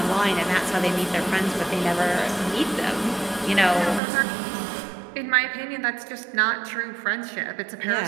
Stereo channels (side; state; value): left; drops out; at 4.0 s